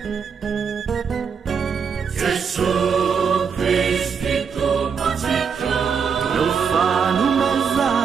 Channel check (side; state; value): left; quieter; 6.4 dB